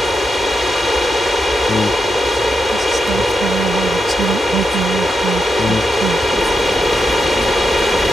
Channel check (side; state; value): both; normal; correlation 0.84